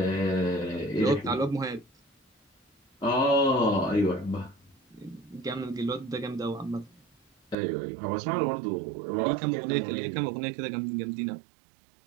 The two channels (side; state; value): left; drops out; at 7.6 s